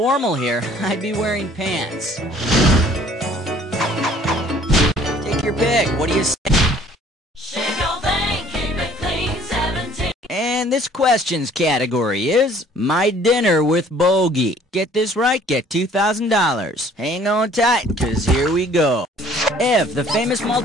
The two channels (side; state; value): both; normal; correlation 0.55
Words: here, I'd be wearing pants. Take your pick. What do you say? Shake your thing, keep it clean, 17. And this questions category is My Dinner with Bogey. Get this right, get $2,000. Hang on tight, because here we go. If the famous